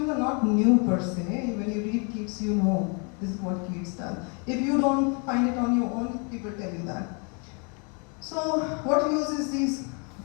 are not new per se. When you read Keats, you know this is what Keats does. If you don't find it on your own, people tell you that. So what uses these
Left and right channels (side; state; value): right; quieter; 35.7 dB